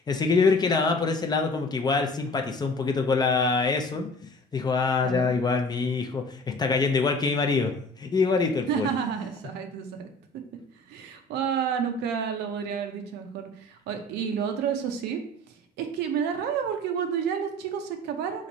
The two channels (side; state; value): both; normal; correlation 0.44